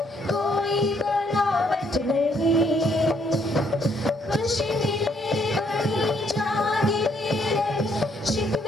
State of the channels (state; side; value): normal; both; correlation 0.69